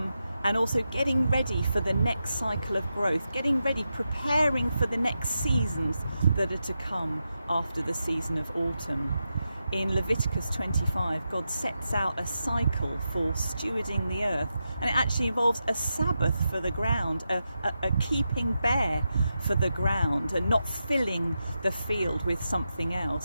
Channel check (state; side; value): inverted; both; correlation -0.88